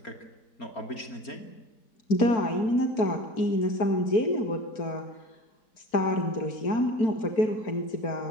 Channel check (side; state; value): right; late; 4.5 ms